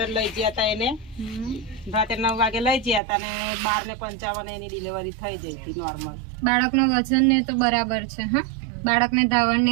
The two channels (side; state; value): left; drops out; at 3.0 s